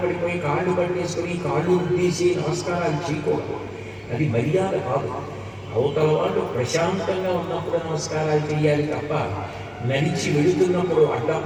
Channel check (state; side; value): identical; both; correlation 1.00